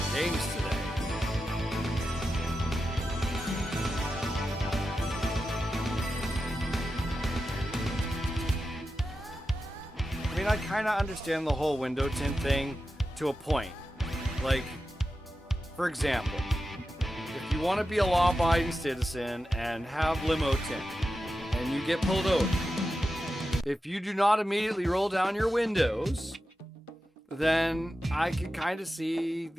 games today. I mean, I kind of understand the whole window tint thing to a point. Like, for example, if you want to be a law-abiding citizen and have limo tint, and you get pulled over, if you do not immediately roll down your windows, then I can kind of see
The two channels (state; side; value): normal; both; correlation 0.91